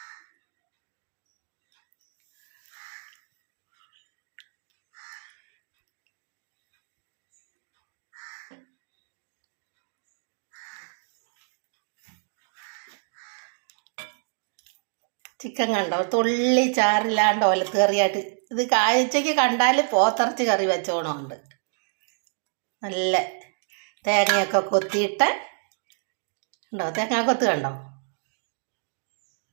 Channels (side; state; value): left; silent; digital silence